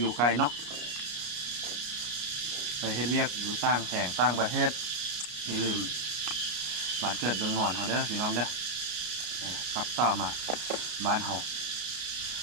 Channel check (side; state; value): left; late; 33 ms